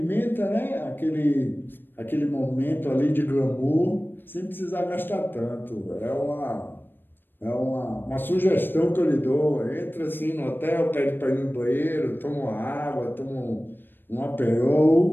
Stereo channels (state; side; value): late; right; 0.096 ms